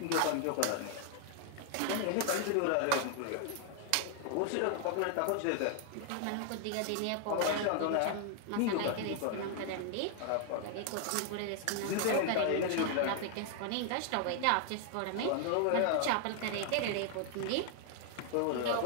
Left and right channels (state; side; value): different; both; correlation 0.00